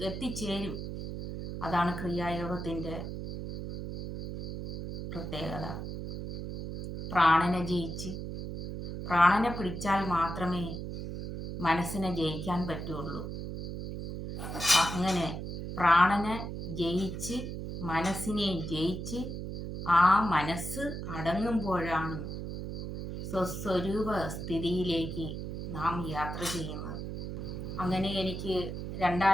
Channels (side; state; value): right; noise; hum, 6 dB below the sound